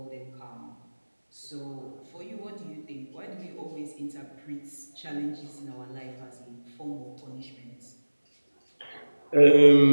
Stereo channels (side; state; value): both; inverted; correlation -1.00